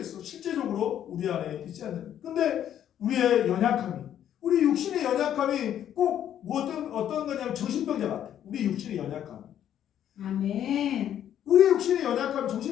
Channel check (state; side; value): quieter; right; 10.4 dB